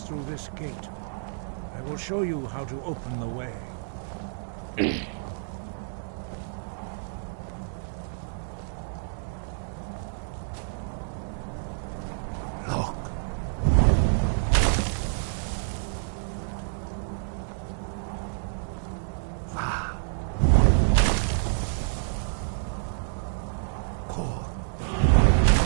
through this gate. I will show you how to open the way. Look. Ah. Cool.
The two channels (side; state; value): left; silent; 59 dB below the other